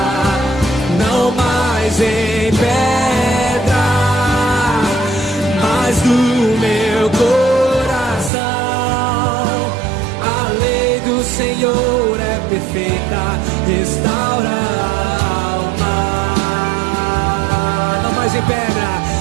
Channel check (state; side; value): drops out; left; at 8.3 s